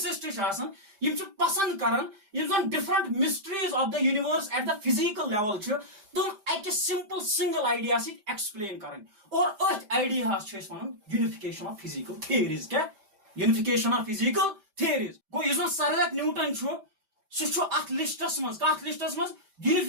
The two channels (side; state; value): left; late; 5.1 ms